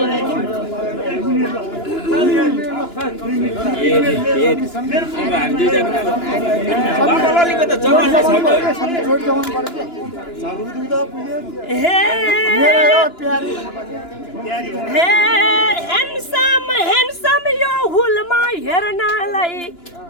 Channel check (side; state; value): right; late; 2.9 ms